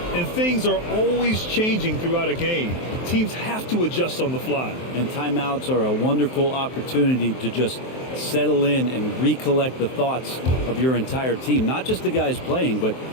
And things are always changing throughout a game. Teams have to adjust on the fly. And timeouts are a wonderful opportunity to just settle in and recollect the thoughts of your entire team. Not just the guys playing, but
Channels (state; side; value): late; right; 23 ms